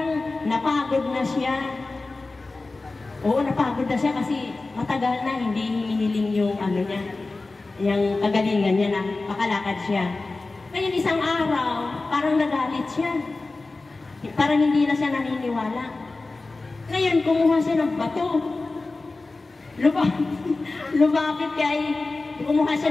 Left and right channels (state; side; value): quieter; right; 3.4 dB